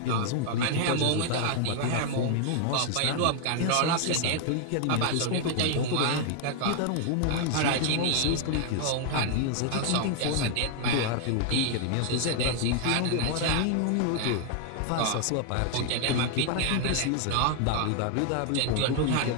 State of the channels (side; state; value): both; different; correlation 0.00